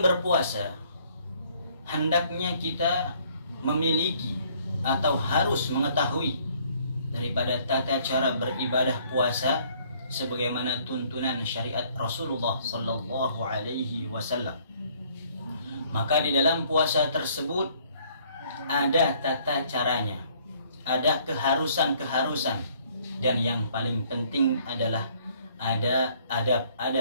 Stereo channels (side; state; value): both; inverted; correlation -0.62